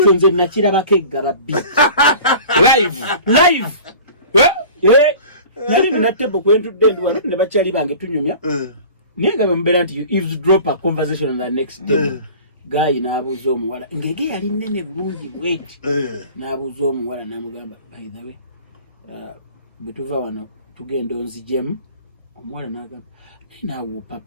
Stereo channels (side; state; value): both; inverted; correlation -0.42